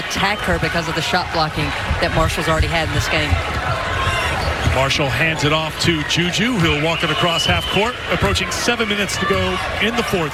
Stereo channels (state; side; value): identical; both; correlation 1.00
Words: her because of the shot blocking that Marshall's already had in this game. Marshall hands it off to Juju. He'll walk it across half court. Approaching 7 minutes to go in the